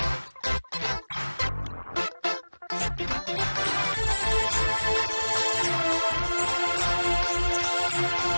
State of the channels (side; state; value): both; inverted; correlation -1.00